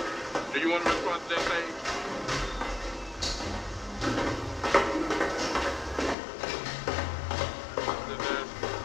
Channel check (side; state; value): right; drops out; at 6.2 s